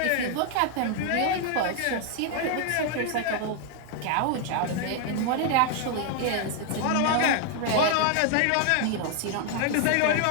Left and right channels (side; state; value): both; different; correlation 0.00